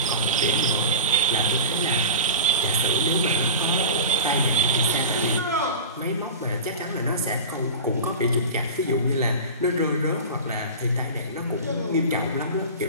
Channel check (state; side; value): inverted; both; correlation -0.32